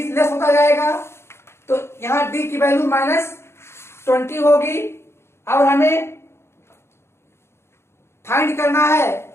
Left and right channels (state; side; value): late; right; 0.12 ms